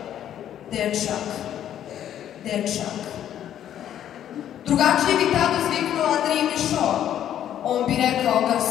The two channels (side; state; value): right; quieter; 10.7 dB